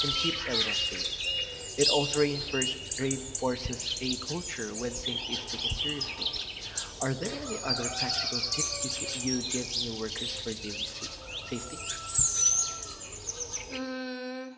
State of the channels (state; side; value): identical; both; correlation 1.00